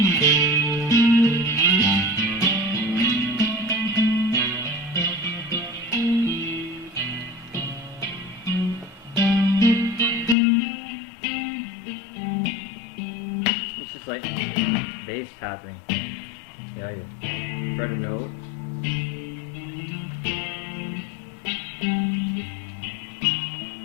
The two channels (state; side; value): drops out; right; at 10.4 s